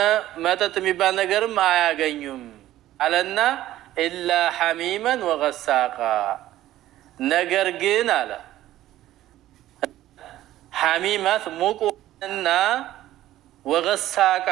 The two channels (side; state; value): left; quieter; 14.1 dB